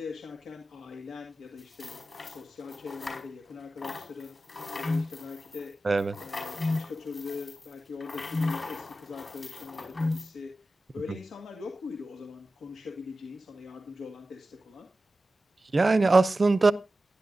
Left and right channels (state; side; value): normal; both; correlation 0.94